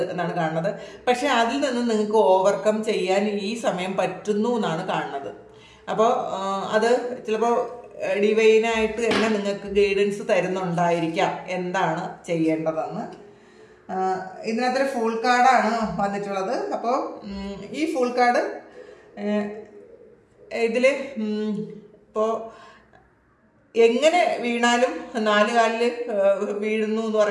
എന്നാണ് കാണുന്നത്. പക്ഷെ അതിൽ നിന്ന് നിങ്ങൾക്ക് ഓവർകം ചെയ്യാൻ ഈ സമയം പറ്റുന്നു എന്നാണ് കാണുന്നത്. അപ്പോൾ അത് ചിലപ്പോൾ ഡിവൈനായിട്ട് തന്നെ നിങ്ങൾക്ക് ഗൈഡൻസ് തരുന്നുണ്ടായിരിക്കാം എന്താണ് ചെയ്യേണ്ടതെന്ന്. ഇതിനകത്തൊരു ഫുൾ കാർഡാണ് വന്നിട്ടുള്ളത്. അപ്പോൾ ഈ ഫുൾ കാർഡ് ഇതിൽ ഇപ്പോൾ എങ്ങനെ വീണാലും 4 കാലിൽ വീഴുന്നു എന്ന്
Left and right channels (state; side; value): identical; both; correlation 1.00